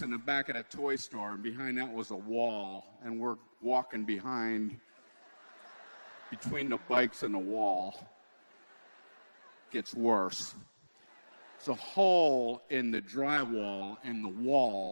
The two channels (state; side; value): inverted; both; correlation -1.00